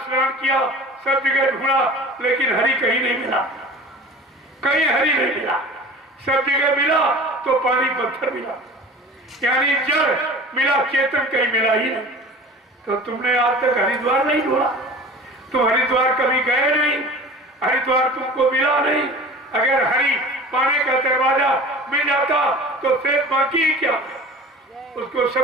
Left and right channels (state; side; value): normal; both; correlation 0.40